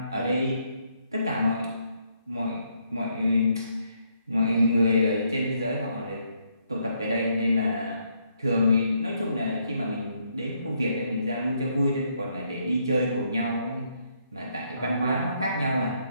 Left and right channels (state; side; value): inverted; both; correlation -0.74